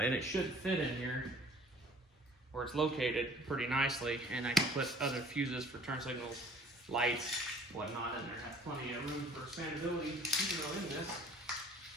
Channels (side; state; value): both; normal; correlation 0.53